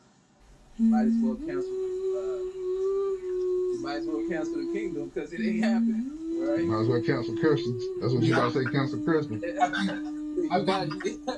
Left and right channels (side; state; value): both; identical; correlation 1.00